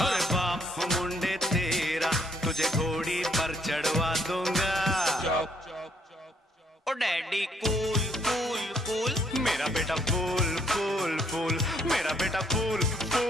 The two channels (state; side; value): normal; both; correlation 0.68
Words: अरे बाप मुंडे तेरा तुझे घोड़ी पर चढ़वा दूंगा। Oh daddy cool cool cool, मेरा बेटा फूल फूल फूल, मेरा बेटा fool